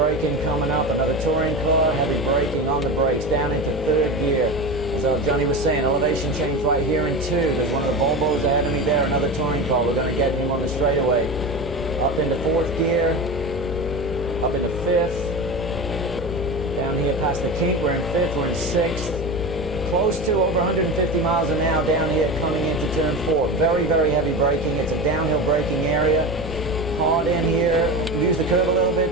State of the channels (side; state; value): both; normal; correlation 0.26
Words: coming up, another touring car, heavy braking on the brakes, down into 3rd gear. As Johnny was saying, elevation change right here in 2. There's one of the Volvos ahead of me there, another touring car. We're going to get him on the straightaway. Up into 4th gear, up into 5th. Down here past the kink, we're in 5th, we're in 6th. Close to over 150 miles an hour down here coming into turn 4. Very, very heavy braking. It's a downhill braking area. Hard in here, use the curve a little